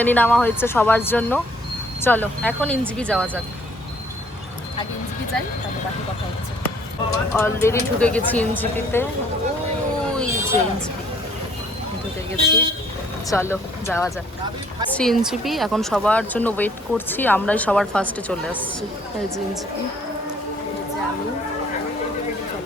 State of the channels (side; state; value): both; normal; correlation 0.61